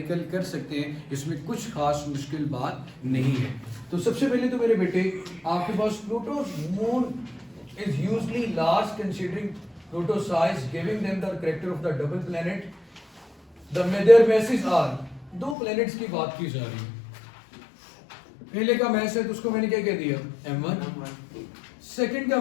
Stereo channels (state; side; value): drops out; right; at 15.6 s